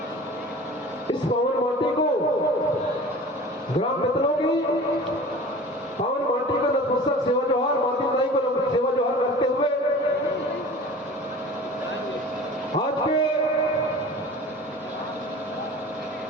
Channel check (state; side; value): normal; both; correlation 0.40